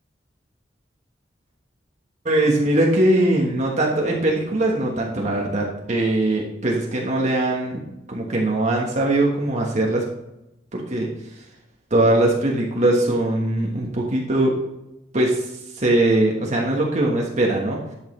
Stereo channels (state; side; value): normal; both; correlation 0.55